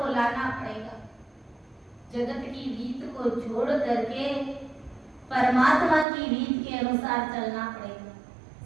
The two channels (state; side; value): drops out; left; at 6.1 s